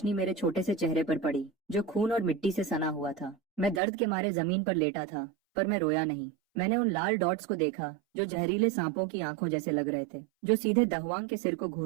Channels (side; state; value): left; drops out; at 3.8 s